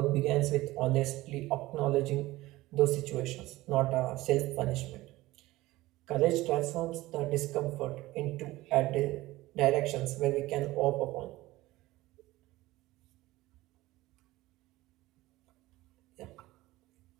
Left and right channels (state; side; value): quieter; left; 18.3 dB